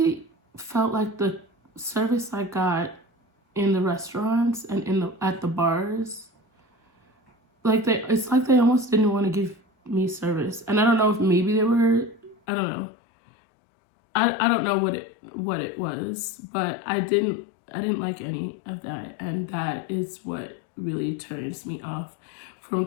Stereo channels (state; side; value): drops out; right; at 12.4 s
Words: felt like the service I got in the restaurants and at the bars, like it's like they almost didn't want to give me service. And I don't know if maybe they were, I don't know. I don't know what it was, but I didn't like any of that, and that is what really turns me off from